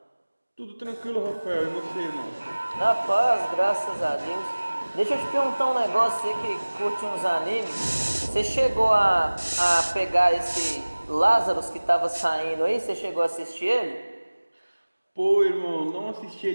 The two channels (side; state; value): both; inverted; correlation -1.00